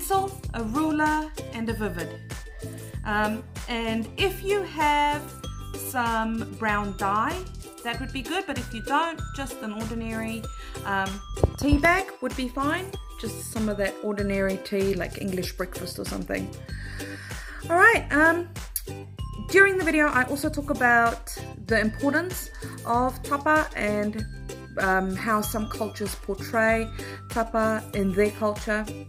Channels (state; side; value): identical; both; correlation 1.00